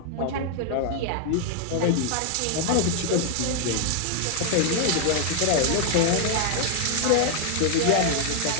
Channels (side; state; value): both; different; correlation 0.00